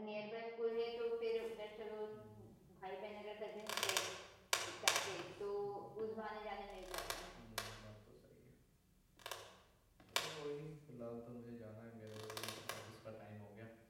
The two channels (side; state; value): both; identical; correlation 1.00